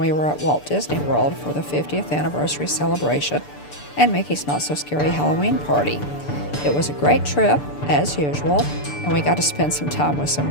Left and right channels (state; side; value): late; right; 6.8 ms